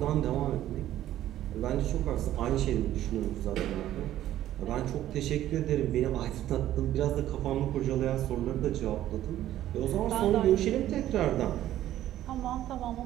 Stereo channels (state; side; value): quieter; left; 13.0 dB